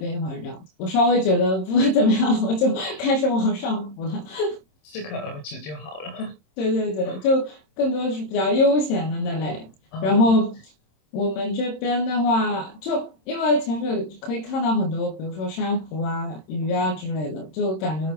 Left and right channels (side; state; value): right; late; 26 ms